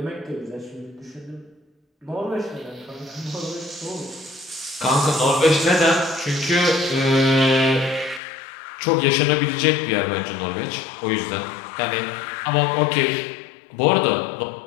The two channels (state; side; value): drops out; right; at 8.2 s